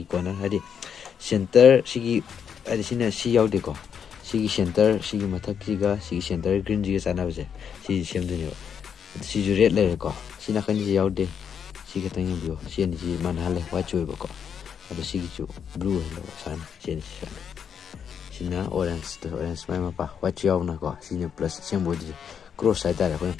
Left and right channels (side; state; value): right; quieter; 7.6 dB